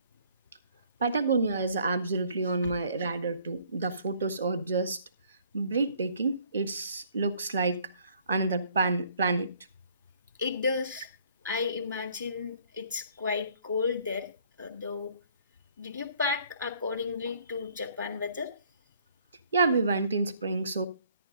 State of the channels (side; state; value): both; inverted; correlation -0.61